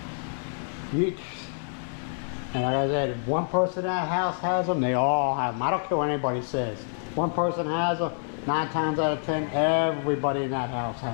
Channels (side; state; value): right; silent; digital silence